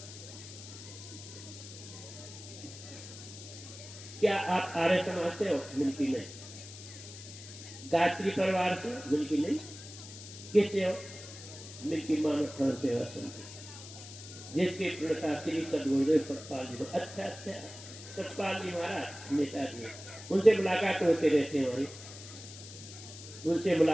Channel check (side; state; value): left; noise; hiss, 14 dB below the sound